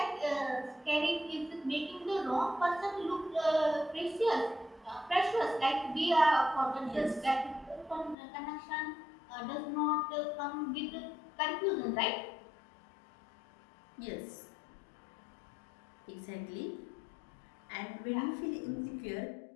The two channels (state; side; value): drops out; right; at 8.2 s